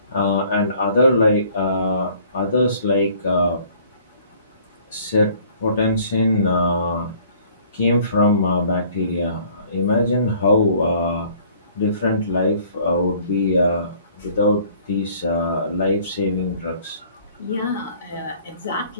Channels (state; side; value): inverted; both; correlation -0.56